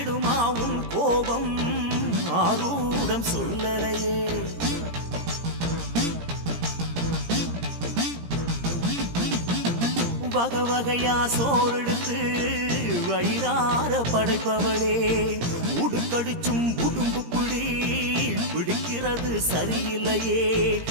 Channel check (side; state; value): left; late; 17 ms